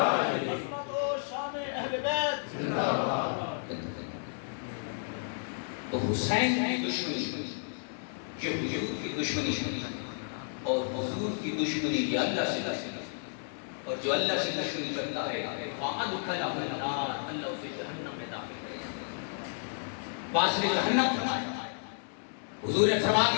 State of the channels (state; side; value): silent; right; digital silence